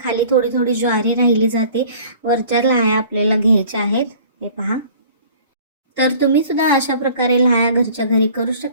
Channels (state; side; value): inverted; both; correlation -0.49